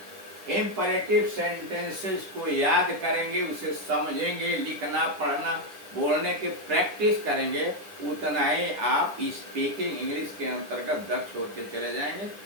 इम्परेटिव सेंटेंसेस को याद करेंगे, उसे समझेंगे, लिखना पढ़ना बोलने की प्रैक्टिस करेंगे, उतना ही आप स्पीकिंग इंग्लिश के अंतर्गत दक्ष होते चले जाएंगे।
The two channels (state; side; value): late; left; 10 ms